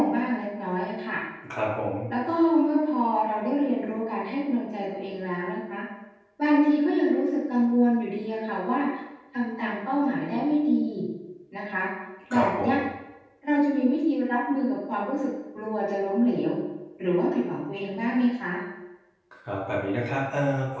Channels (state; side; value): identical; both; correlation 1.00